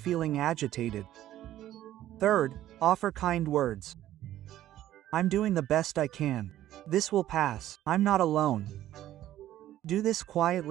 agitated. 3. Offer kind words. I'm doing the best I can. This will pass. I'm not alone. Do this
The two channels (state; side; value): quieter; left; 13.1 dB